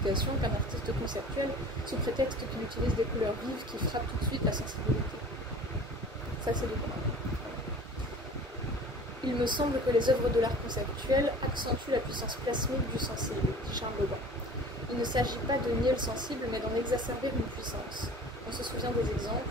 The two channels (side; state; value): both; normal; correlation 0.43